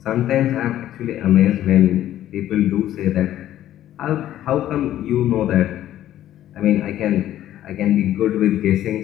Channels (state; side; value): quieter; right; 12.6 dB